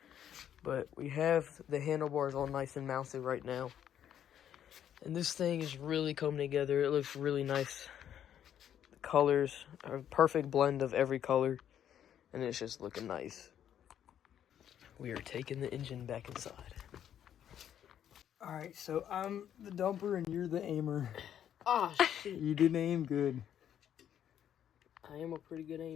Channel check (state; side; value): quieter; right; 9.9 dB